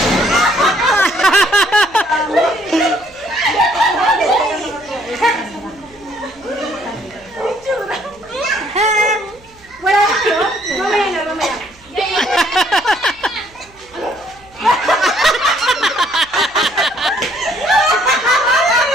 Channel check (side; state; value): right; noise; hum, 28 dB below the sound